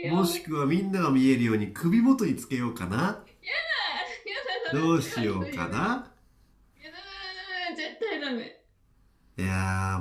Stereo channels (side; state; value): both; identical; correlation 1.00